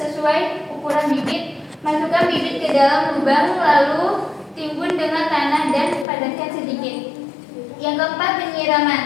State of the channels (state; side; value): drops out; right; at 6.1 s